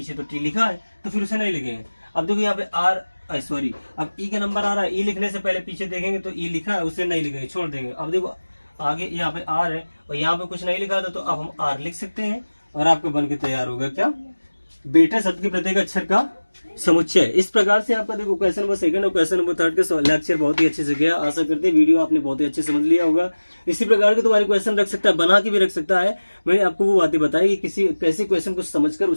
तो टी लिखा है तो फिर उसे नहीं लिखेंगे। अब देखो यहाँ पे आर सॉरी अब ई का नंबर आ रहा है, ई लिखने से पहले पीछे देखेंगे तो ई लिखा है उसे नहीं लिखेंगे, छोड़ देंगे। अब देखो आगे यहाँ पे आर है और यहाँ पे कुछ नहीं लिखा था तो अब हम आर लिख सकते हैं और आपका बन के तैयार होगा क्या, बेटा शब्द के प्रत्येक अक्षर का समुच्चय। इस प्रकार से आपका देखो क्वेश्चन नंबर 2 और क्वेश्चन नंबर 3 का लेक्चर बहुत ही अच्छे से गया। आशा करते हैं वीडियो आपने बहुत ही अच्छे समझ लिया होगा। इसी प्रकार के तुम्हारे क्वेश्चन रख सकता है, बना के भी रख सकता है। मैंने आपको वो बातें बताई कि किसी कैसे क्वेश्चन को समझकर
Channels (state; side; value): inverted; both; correlation -1.00